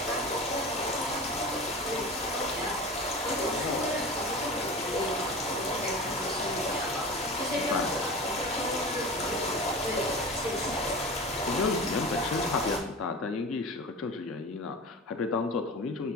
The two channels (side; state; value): both; normal; correlation 0.32